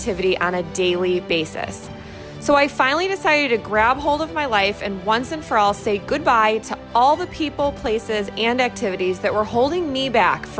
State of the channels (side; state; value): both; identical; correlation 1.00